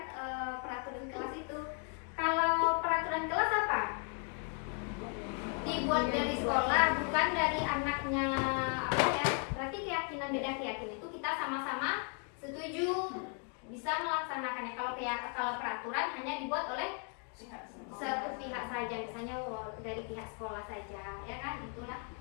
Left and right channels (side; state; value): right; quieter; 38.3 dB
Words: peraturan kelas itu. Kalau peraturan kelas apa? Dibuat dari sekolah, bukan dari anaknya apa ya. Berarti keyakinan beda keyakinan itu kita sama-sama setuju bisa melaksanakannya. Kalau peraturan hanya dibuat oleh satu pihak saja, misalnya dari pihak sekolah saja, ya kan? Itulah